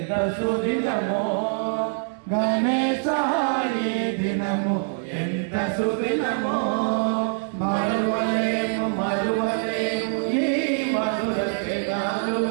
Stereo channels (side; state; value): left; silent; 62 dB below the other